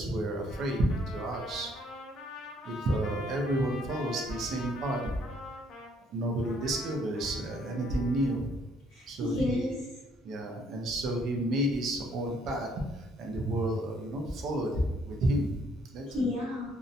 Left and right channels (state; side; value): normal; both; correlation 0.66